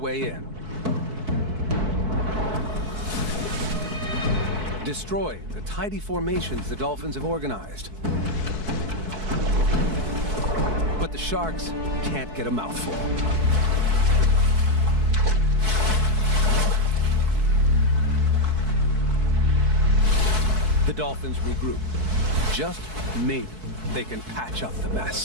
in, destroying the tidy formations the dolphins have organized. But the sharks can't get a mouthful. The dolphins regroup. Just maybe they can patch up the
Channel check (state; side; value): late; left; 4.6 ms